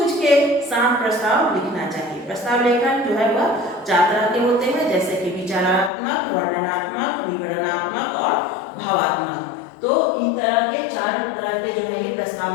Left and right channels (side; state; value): right; drops out; at 5.9 s